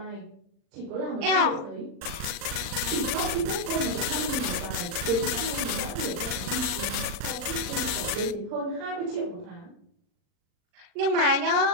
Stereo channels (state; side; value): late; left; 40 ms